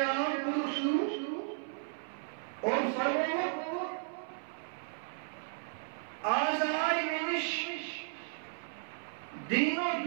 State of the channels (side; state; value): left; silent; 55 dB below the other